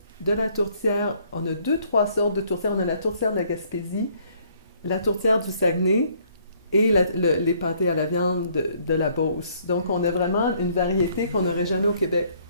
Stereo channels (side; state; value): both; inverted; correlation -0.64